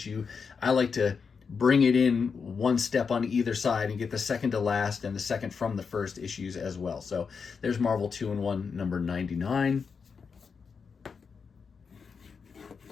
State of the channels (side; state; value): right; quieter; 5.7 dB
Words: I like to bring it in one step on either side and get the second to last and the second from the first issues as well. So there's Marvel 2-in-1 number 99.